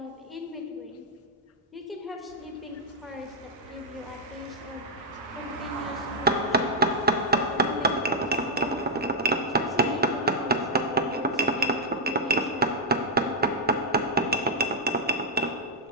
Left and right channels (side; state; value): both; normal; correlation -0.03